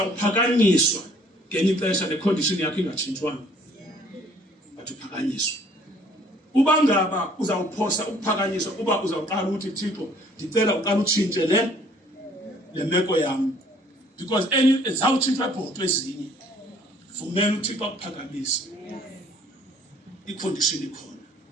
ngenye ixesha necondition yakho ingatshintshwanga. Bathi uphakanyiswa. Uba ngaba uzawuphosa ukuphakanyiswa uba uzawuqala ukuthi Thixo ndicela uqala utshintshe le meko yami. Because zawutshintshwa ibhotwe ezinye vumela uThixo akuphakamise. Icondition ikhona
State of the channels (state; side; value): normal; both; correlation 0.58